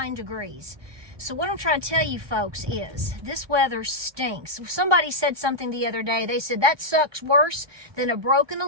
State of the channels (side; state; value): left; late; 1.2 ms